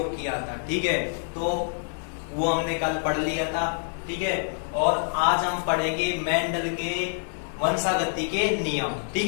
किया था। ठीक है, तो वो हमने कल पढ़ लिया था। ठीक है, और आज हम पढ़ेंगे मेंडल के वंशागति के नियम।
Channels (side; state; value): right; silent; 61 dB below the other